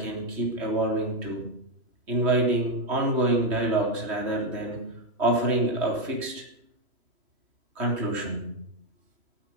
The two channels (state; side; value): late; left; 3.2 ms